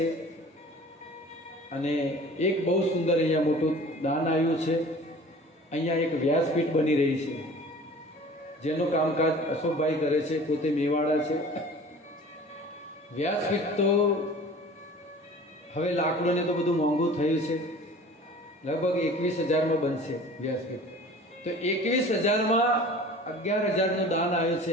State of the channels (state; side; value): normal; both; correlation 0.44